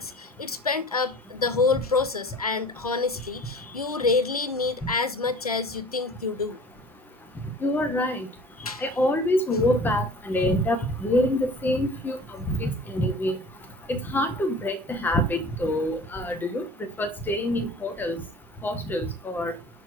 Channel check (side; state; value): both; normal; correlation 0.44